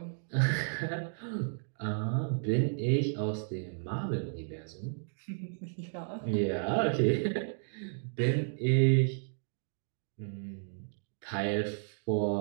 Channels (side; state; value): left; silent; digital silence